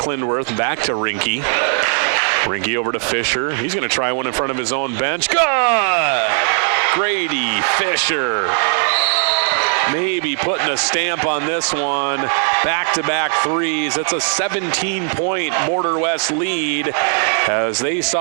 Back to Rinke. Rinke over to Fisher. He's going to try one in front of his own bench. Good! Grady Fisher. Maybe putting a stamp on this one. Back-to-back 3s. It's a 17-point Border West lead as they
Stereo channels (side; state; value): left; silent; 61 dB below the other